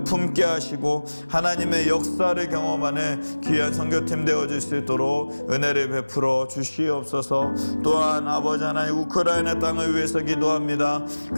품게 하시고 하나님의 역사를 경험하는 귀한 선교팀 되어질 수 있도록 은혜를 베풀어 주시옵소서. 또한 아버지 하나님 우크라이나 땅을 위해서 기도합니다.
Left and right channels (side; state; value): both; inverted; correlation -1.00